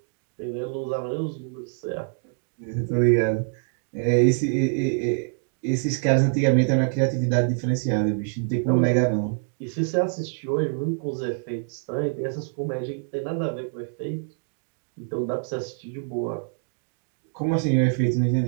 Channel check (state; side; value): silent; left; digital silence